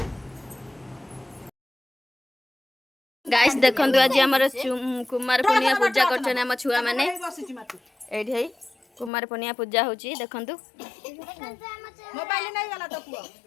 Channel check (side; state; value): right; drops out; at 9.1 s